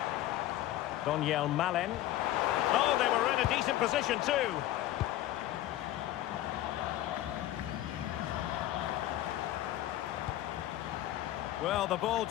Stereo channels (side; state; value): right; quieter; 14.2 dB